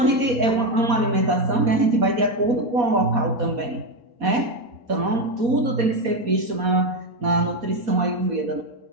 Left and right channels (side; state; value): left; late; 4.2 ms